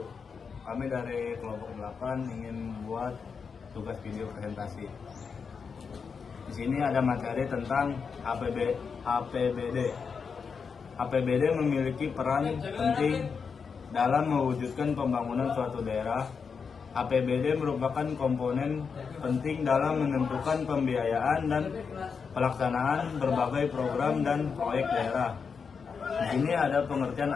Kami dari kelompok 8 ingin membuat tugas video presentasi. Di sini ada materi tentang APBD. APBD memiliki peran penting dalam mewujudkan pembangunan suatu daerah. APBD merupakan komponen penting dalam menentukan pembiayaan dan pelaksanaan berbagai program dan proyek daerah. Di sini ada pengertian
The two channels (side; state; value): right; quieter; 5.8 dB